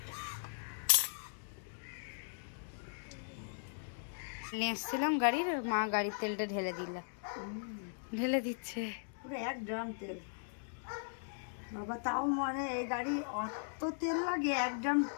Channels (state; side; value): silent; right; digital silence